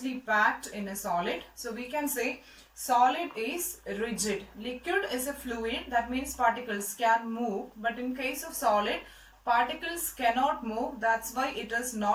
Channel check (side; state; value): both; identical; correlation 1.00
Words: packed in a solid. So we can say solid is rigid. Liquid is a fluid, that means particles can move, but in case of solid, particles cannot move. That's why it is